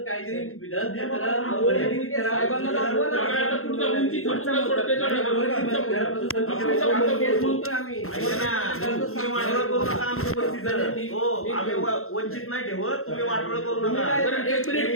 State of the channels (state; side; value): late; right; 0.62 ms